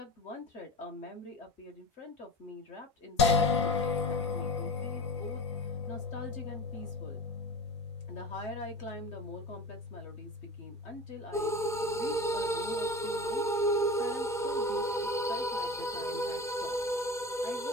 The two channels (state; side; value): normal; both; correlation 0.32